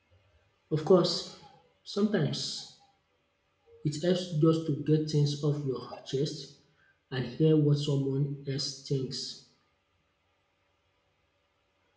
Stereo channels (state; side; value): identical; both; correlation 1.00